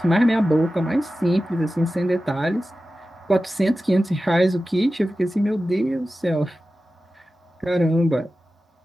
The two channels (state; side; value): normal; both; correlation 0.94